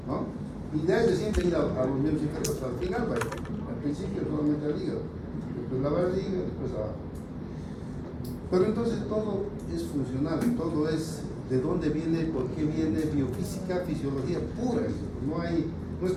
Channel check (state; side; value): identical; both; correlation 1.00